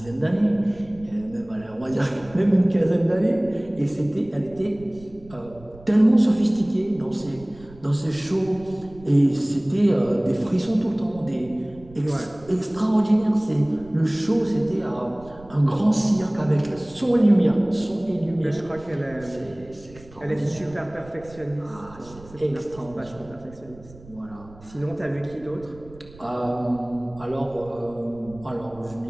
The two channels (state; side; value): noise; right; rumble, 21 dB below the sound